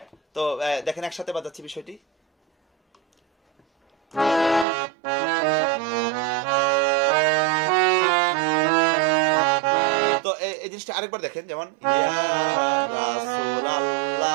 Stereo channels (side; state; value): left; drops out; at 4.7 s